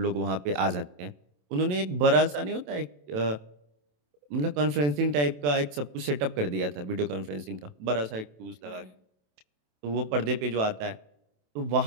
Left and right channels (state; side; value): late; left; 27 ms